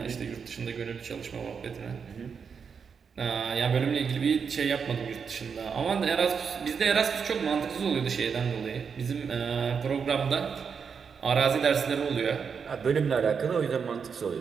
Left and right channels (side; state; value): left; quieter; 6.2 dB